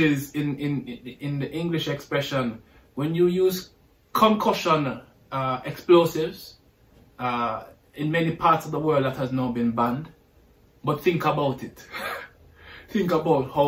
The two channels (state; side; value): identical; both; correlation 1.00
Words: in the English expression, when you use concussion explosives, in many parts of the world that has now been banned. But think about it. Think about